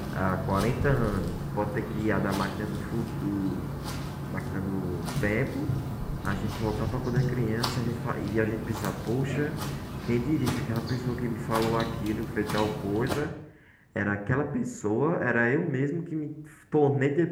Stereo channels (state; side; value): identical; both; correlation 1.00